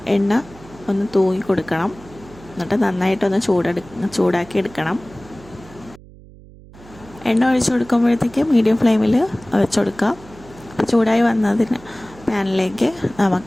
എണ്ണ ഒന്ന് തൂങ്ങി കൊടുക്കണം. എന്നിട്ട് നന്നായിട്ടൊന്ന് ചൂടാക്കി എടുക്കണം. എണ്ണ ഒഴിച്ചു കൊടുക്കുമ്പോഴത്തേക്ക് മീഡിയം ഫ്ലെയിമിൽ വെച്ച് കൊടുക്കാം. അപ്പോൾ ചൂടായി വന്നതിന് പാനിലേക്ക്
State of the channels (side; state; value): right; noise; hum, 21 dB below the sound